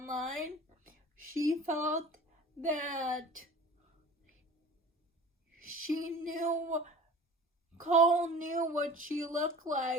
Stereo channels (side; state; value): both; normal; correlation 0.40